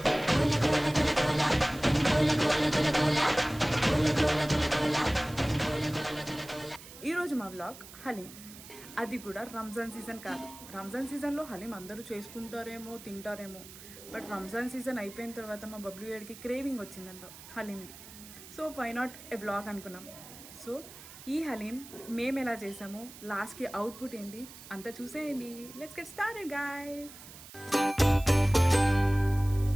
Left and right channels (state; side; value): noise; right; hiss, 17 dB below the sound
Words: ఈరోజు మా vlog haleem. అది కూడా రంజాన్ సీజన్ కాదు. రంజాన్ సీజన్లో హలీం అందరూ చేసుకుంటారేమో, తింటారేమో. బట్ రంజాన్ సీజన్ అయిపోయిన తర్వాత మా బబ్లు ఏడికి క్రేవింగ్ వచ్చిందంట హలీంది. So why not a vlog అనుకున్నాం. సో ఈ హలీం మేము ఎలా చేసామో, లాస్ట్కి అవుట్పుట్ ఏంటి అంతా చూసేయండి. Let's get started guys.